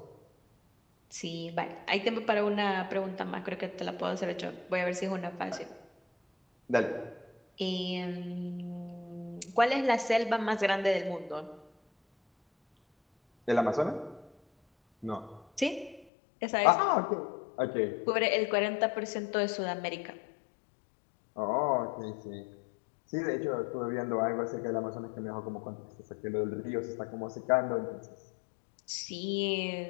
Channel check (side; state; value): right; drops out; at 16.1 s